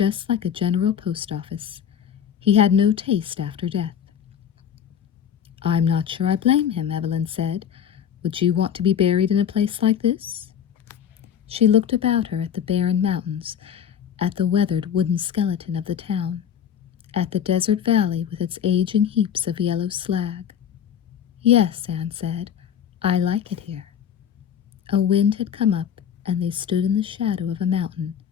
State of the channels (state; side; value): quieter; right; 8.7 dB